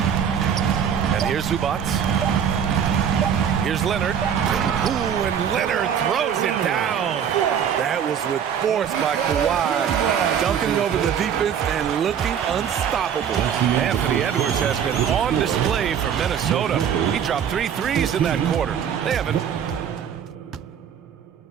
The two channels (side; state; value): left; quieter; 8.3 dB